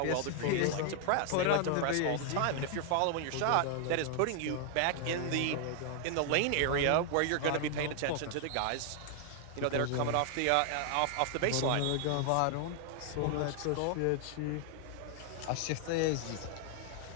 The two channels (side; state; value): both; different; correlation 0.00